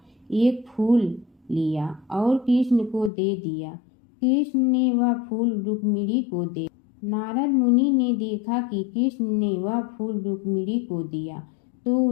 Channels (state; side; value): drops out; right; at 3.1 s